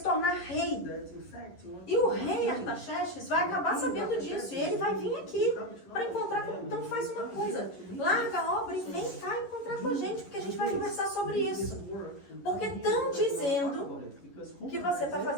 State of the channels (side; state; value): right; late; 11 ms